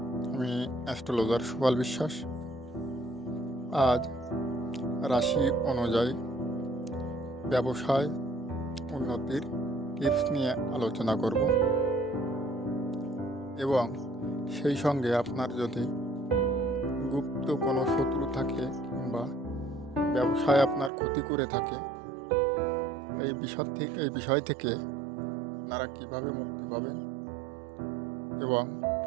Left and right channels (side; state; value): left; drops out; at 20.9 s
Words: আমি অ্যাস্ট্রোলজার সুপাল বিশ্বাস। আজ রাশি অনুযায়ী ব্যবসায় উন্নতির টিপস নিয়ে আলোচনা করব এবং সেই সঙ্গে আপনার যদি গুপ্ত কোনো শত্রু থাকে কিংবা ব্যবসায় আপনার ক্ষতি করে থাকে, এই বিষয় থেকে আপনারা কীভাবে মুক্তি পাবেন এবং